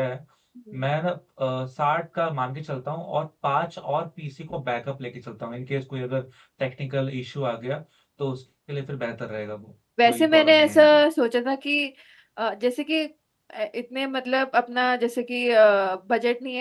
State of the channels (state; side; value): identical; both; correlation 1.00